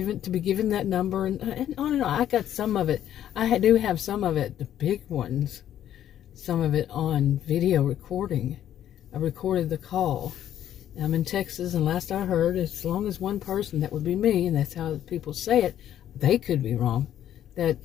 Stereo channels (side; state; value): right; quieter; 11.1 dB